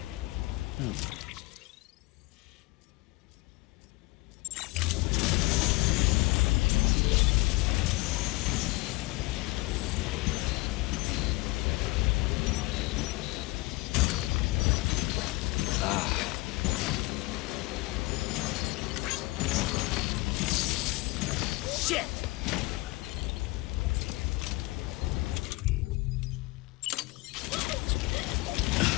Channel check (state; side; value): quieter; right; 22.9 dB